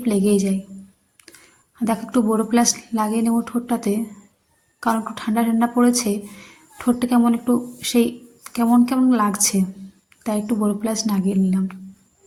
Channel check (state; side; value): identical; both; correlation 1.00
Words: লেগেই যায়। দেখো, একটু বড়ো প্লাস লাগিয়ে নেবো ঠোঁটটাতে, কারণ একটু ঠান্ডা ঠান্ডা পড়েছে। ঠোঁটটা কেমন একটু সেই কেমন কেমন লাগছে, তাই একটু বড়ো প্লাস লাগিয়ে নিলাম।